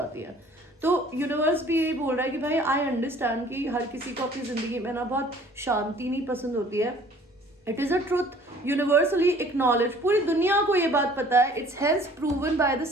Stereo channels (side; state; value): both; normal; correlation 0.53